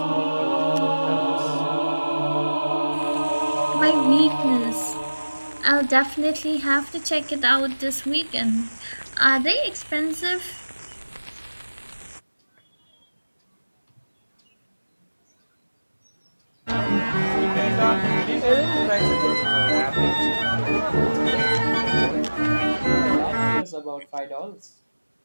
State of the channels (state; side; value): inverted; both; correlation -1.00